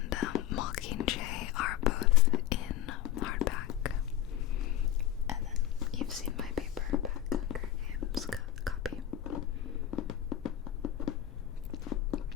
Mockingjay are both in hardback, and then you've seen my paperback Hunger Games copy.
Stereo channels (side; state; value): right; quieter; 11.9 dB